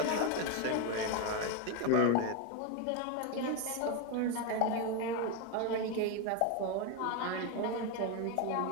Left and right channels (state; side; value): different; both; correlation 0.02